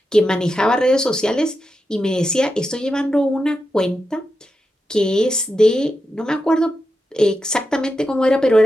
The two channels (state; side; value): normal; both; correlation 0.88